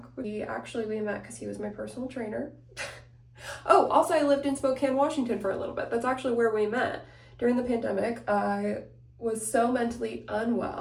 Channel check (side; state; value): both; identical; correlation 1.00